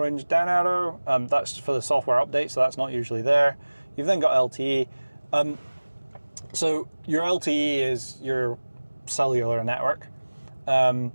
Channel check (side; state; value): both; inverted; correlation -1.00